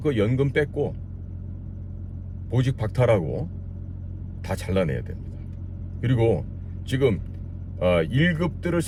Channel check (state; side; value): identical; both; correlation 1.00